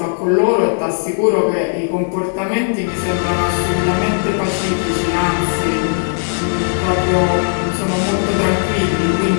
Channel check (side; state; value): right; silent; digital silence